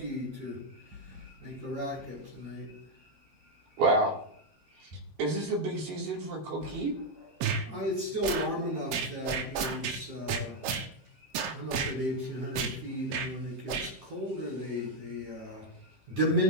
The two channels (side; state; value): left; late; 7.6 ms